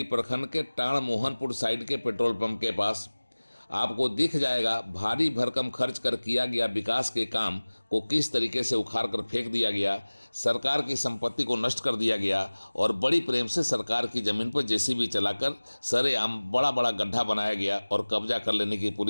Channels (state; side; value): inverted; both; correlation -1.00